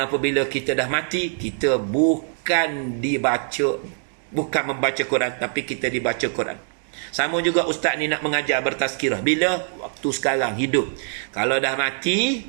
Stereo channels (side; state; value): left; silent; digital silence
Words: apabila kita dah mati, kita bukan membaca Quran, tapi kita dibaca Quran. Sama juga ustaz ni nak mengajar bertazkirah. Bila? Waktu sekarang, hidup. Kalau dah